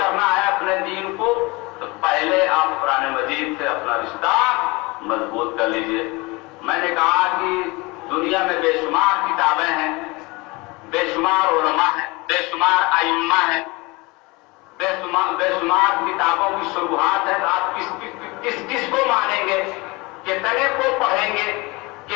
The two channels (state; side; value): quieter; right; 24.8 dB